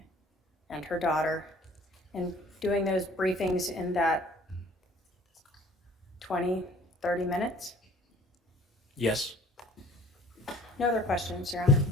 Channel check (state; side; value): normal; both; correlation 0.53